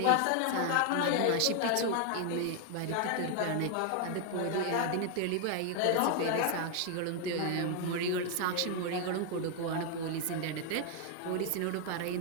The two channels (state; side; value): different; both; correlation 0.00